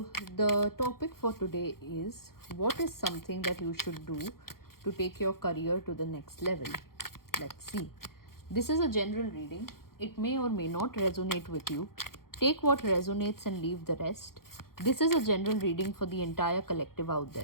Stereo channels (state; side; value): late; right; 0.93 ms